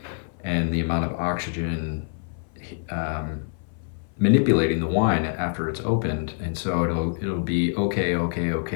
and the amount of oxygen manipulating the wine after it's opened. And so it'll be okay,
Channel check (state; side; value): silent; right; 57 dB below the other